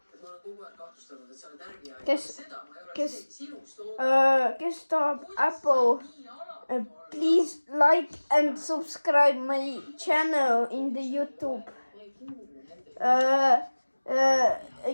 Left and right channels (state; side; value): inverted; both; correlation -1.00